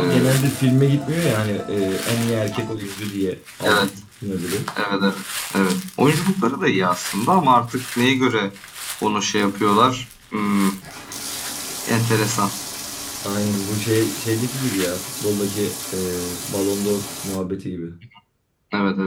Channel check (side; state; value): both; identical; correlation 1.00